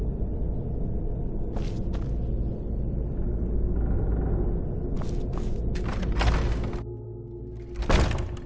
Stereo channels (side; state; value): both; identical; correlation 1.00